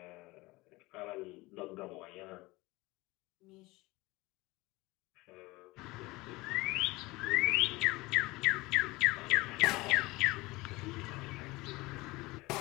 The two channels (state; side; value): quieter; right; 21.6 dB